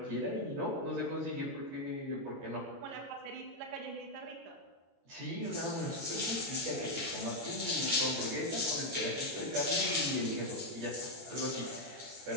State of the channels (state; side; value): late; left; 22 ms